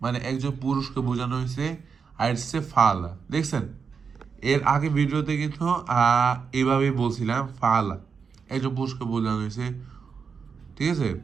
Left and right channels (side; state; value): left; quieter; 5.9 dB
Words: মানে একজন পুরুষকে বোঝানো হয়েছে, আর সে ফালা, দেখছেন। এর আগে ভিডিওতে কিন্তু এইভাবেই বলছিলাম, ফালা একজন পুরুষকে বোঝানো হয়েছে, ঠিক আছে।